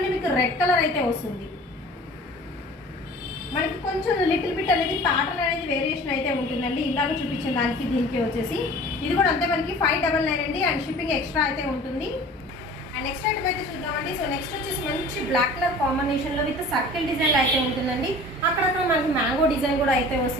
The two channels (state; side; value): normal; both; correlation 0.44